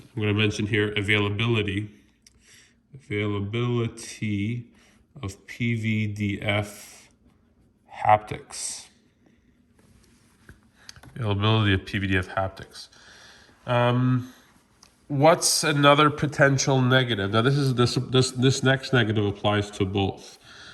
going to mention here, availability of PVDF haptics. Availability of PVDF haptics. What's another potential negative? Now, this next negative applies to both.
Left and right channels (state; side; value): identical; both; correlation 1.00